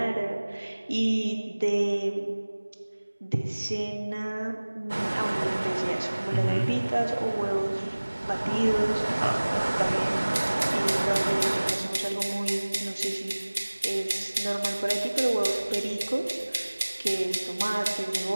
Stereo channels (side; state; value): both; inverted; correlation -1.00